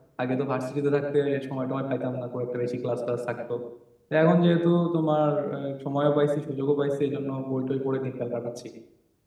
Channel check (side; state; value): both; identical; correlation 1.00